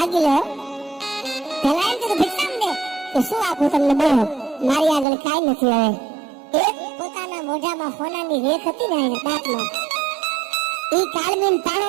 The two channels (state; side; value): drops out; left; at 5.1 s